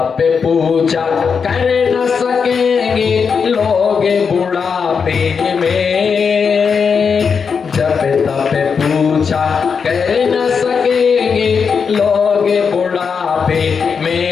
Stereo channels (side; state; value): right; quieter; 6.0 dB